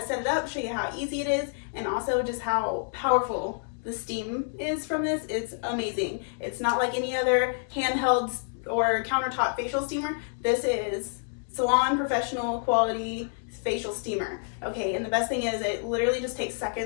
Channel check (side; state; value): right; silent; digital silence